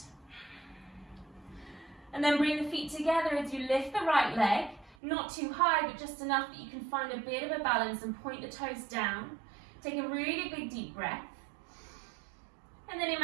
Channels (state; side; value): drops out; left; at 5.0 s